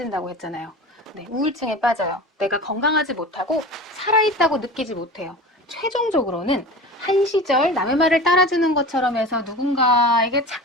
했잖아요. 네, 우울증에 빠져요. 내가 건강하지 못하고 살아있다고 느끼지 못해요. 최종적으로는 한 시절 남의 말을 따라주는 것처럼 해서 누군가에게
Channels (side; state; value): both; normal; correlation 0.34